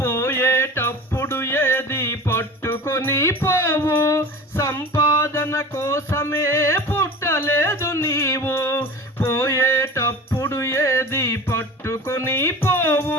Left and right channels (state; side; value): normal; both; correlation 0.36